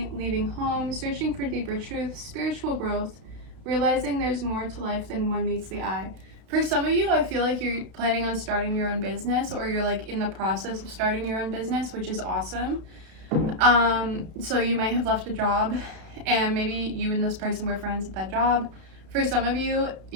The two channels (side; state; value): left; late; 32 ms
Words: leaving home, searching for deeper truth, spiritual growth, realizing there's more to life than one meets the eye. For some of you, I feel like you're planning on starting your own business, or you're like in the process of starting your own business, which is awesome. So you might have left a job and maybe you and this person were friends at that job. For some of you,